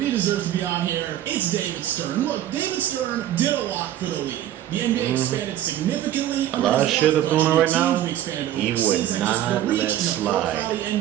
he deserves to be on here. It's David Stern. Look, David Stern did a lot for the league. The NBA expanded significantly. A lot of shit that's going on right now, We expanded he overseas, would and just not the reach let and the slide. profile of the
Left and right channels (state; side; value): quieter; left; 12.2 dB